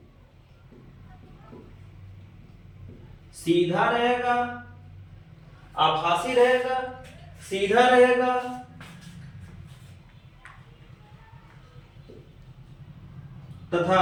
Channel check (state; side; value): identical; both; correlation 1.00